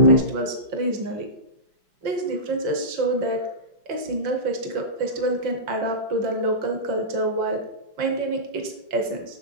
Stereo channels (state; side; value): late; left; 5.6 ms